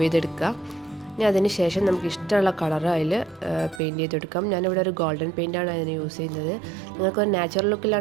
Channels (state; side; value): drops out; left; at 3.8 s